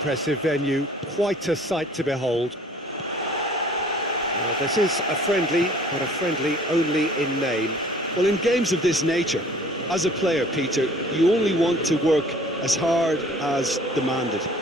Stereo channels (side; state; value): both; normal; correlation 0.52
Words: venue, quite a sight to behold. Now, this is a friendly, but a friendly only in name. Well, in games of this nature, as a player, Peter, you only want to work as hard as demanded.